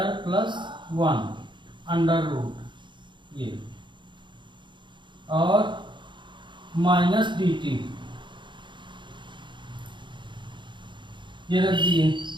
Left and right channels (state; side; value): late; left; 0.23 ms